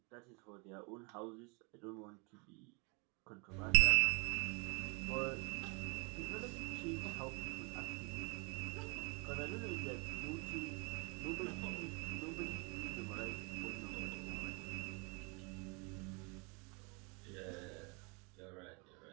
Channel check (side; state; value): left; quieter; 31.6 dB